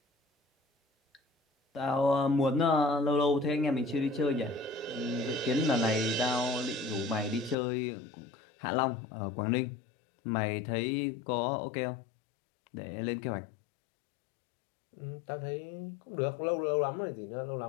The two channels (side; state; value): right; drops out; at 7.6 s